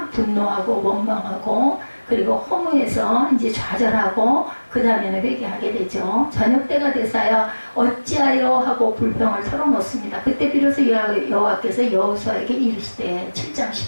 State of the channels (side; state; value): both; inverted; correlation -1.00